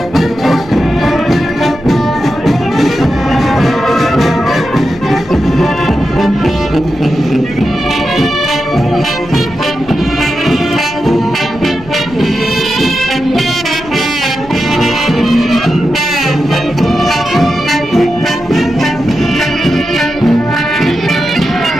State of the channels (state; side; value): noise; right; rumble, 20 dB below the sound